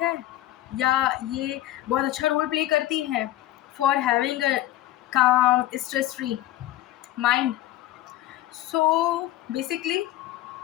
है या ये बहुत अच्छा रोल प्ले करती है फॉर हैविंग अ काम, stress free mind. So basically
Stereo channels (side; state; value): right; quieter; 14.5 dB